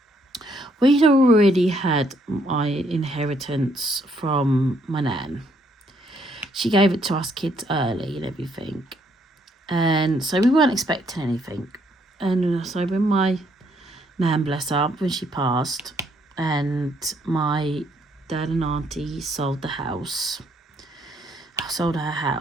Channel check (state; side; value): normal; both; correlation 0.70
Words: we'd already had my inheritance from my nan. She gave it to us kids early and everything, and so we weren't expecting anything. And so when my nan, bless her, when she passed, and my dad and auntie sold her house,